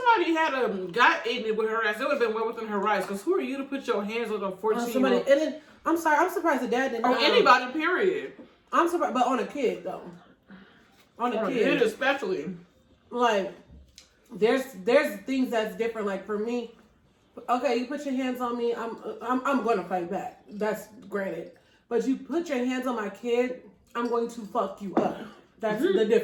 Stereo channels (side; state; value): both; identical; correlation 1.00